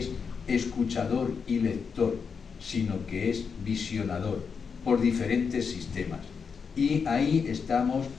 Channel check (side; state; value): right; quieter; 5.9 dB